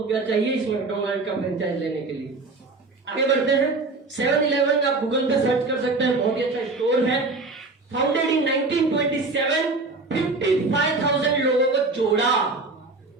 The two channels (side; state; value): left; quieter; 3.5 dB